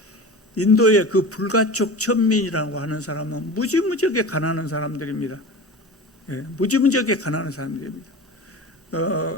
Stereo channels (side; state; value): both; normal; correlation 0.32